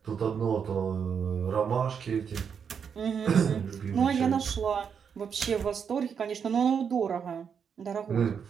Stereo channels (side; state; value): left; quieter; 7.0 dB